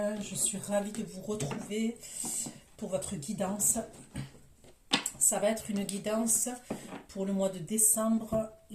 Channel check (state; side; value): identical; both; correlation 1.00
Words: Je suis ravie de vous retrouver pour votre guidance. Ça va être une guidance pour le mois de décembre,